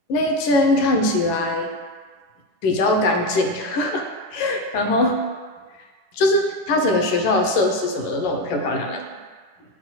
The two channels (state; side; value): late; right; 10 ms